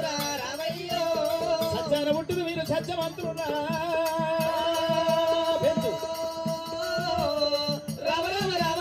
సత్యాన పుట్టిన మీరు సత్యవంతులున్నా.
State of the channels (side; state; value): both; identical; correlation 1.00